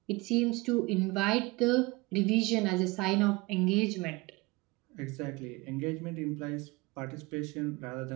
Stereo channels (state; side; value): quieter; left; 23.7 dB